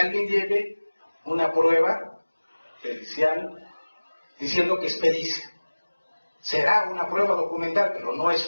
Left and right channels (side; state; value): both; inverted; correlation -1.00